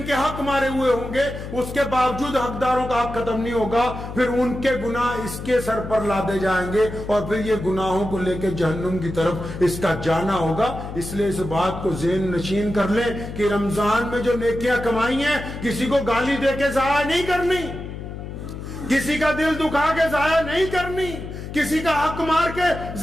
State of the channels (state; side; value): noise; left; hum, 9 dB below the sound